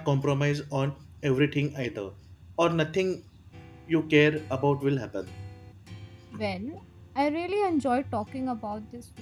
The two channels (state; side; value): identical; both; correlation 1.00